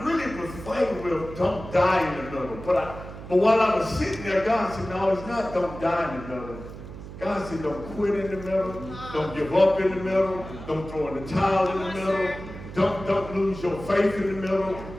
really was fighting with don't die in the middle. But while I was sitting there, God said, no, it's not don't die in the middle. God said, don't quit in the middle. Don't give up in the middle. Don't throw in the towel in the middle. Don't lose your faith in the middle.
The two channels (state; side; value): noise; right; hum, 12 dB below the sound